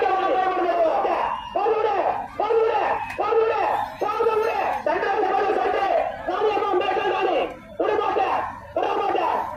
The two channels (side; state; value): both; identical; correlation 1.00